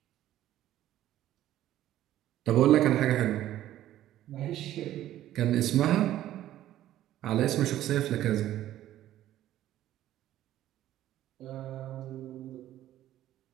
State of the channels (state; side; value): quieter; left; 13.2 dB